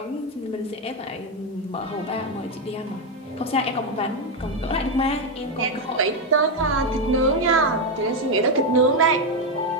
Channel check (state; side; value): normal; both; correlation 0.06